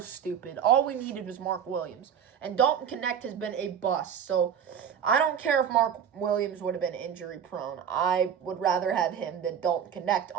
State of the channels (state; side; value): quieter; left; 8.3 dB